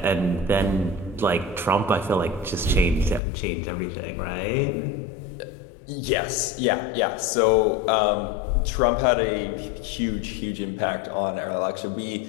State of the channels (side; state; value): right; drops out; at 3.2 s